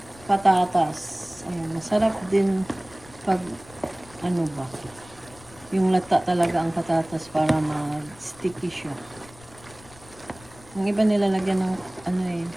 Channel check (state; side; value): noise; left; rumble, 22 dB below the sound